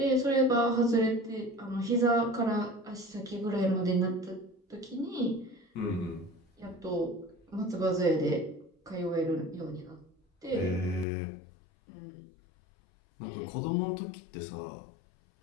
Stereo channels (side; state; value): right; drops out; at 11.1 s